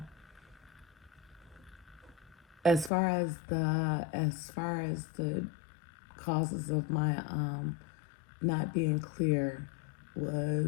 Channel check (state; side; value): drops out; right; at 2.9 s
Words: as far as the causes of my not being clear